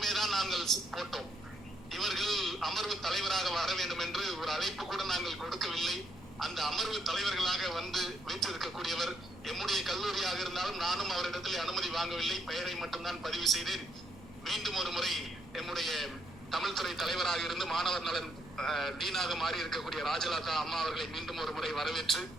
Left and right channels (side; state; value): both; normal; correlation 0.74